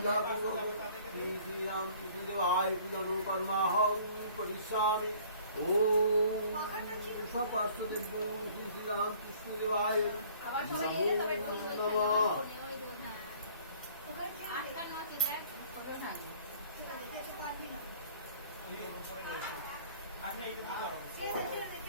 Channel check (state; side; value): inverted; both; correlation -0.54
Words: पूर्वक श्री रामकृष्ण देवाय पूजा नो कर्माहं परिश्यामि ओम सपार्श्वदेव श्री रामकृष्ण देवाय আবার সবাই এলে তবে ঠিক হয়ে যাবে। नमः ওই দোন হ্যাঁ। আটটা নয় দেখ ছোট না। আপনি এইটুকু করো ছেড়ে দে, ছেড়ে দে,